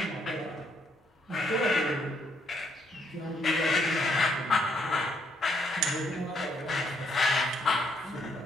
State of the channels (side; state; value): both; normal; correlation 0.72